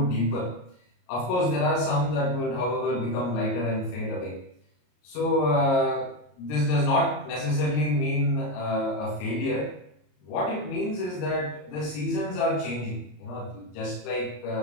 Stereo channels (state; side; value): late; right; 33 ms